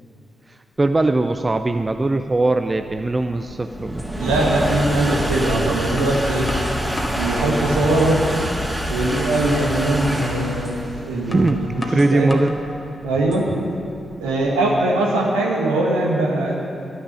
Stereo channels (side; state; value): both; normal; correlation 0.82